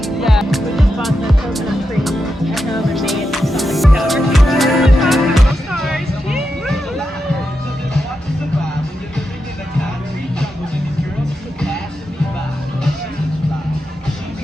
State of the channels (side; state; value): both; normal; correlation 0.87